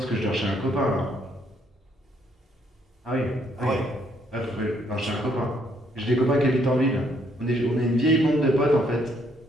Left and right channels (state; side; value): normal; both; correlation 0.69